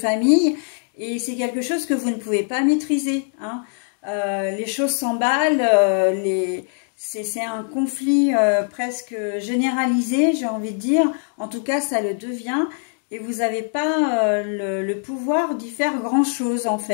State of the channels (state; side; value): silent; right; 57 dB below the other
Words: et c'est quelque chose que vous ne pouvez pas maîtriser, hein. Les choses s'emballent, c'est un conflit presque généralisé, j'ai envie de dire. En tout cas, ça le devient. Et vous n'avez pas le pouvoir d'y faire grand-chose, en